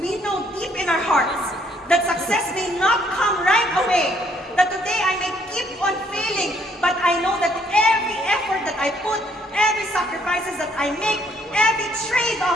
know deep in our hearts that success may not come right away. That today I may keep on failing, but I know that every effort that I put, every sacrifices that I make, every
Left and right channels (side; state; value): both; normal; correlation 0.66